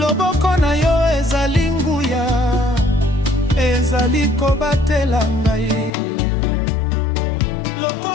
na yo ezali nguya, ezali kobatela ngai.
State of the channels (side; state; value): right; drops out; at 5.9 s